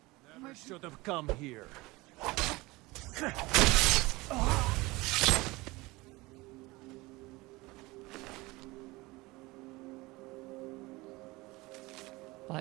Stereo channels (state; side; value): quieter; left; 21.8 dB